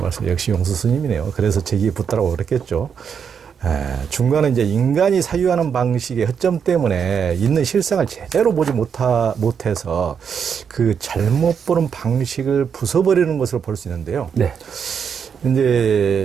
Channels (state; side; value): quieter; left; 7.1 dB